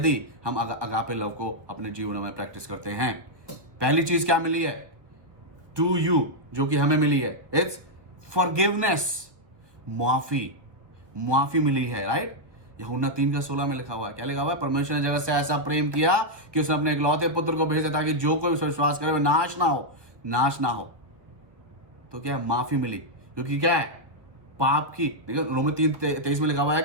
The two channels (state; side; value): late; left; 1.1 ms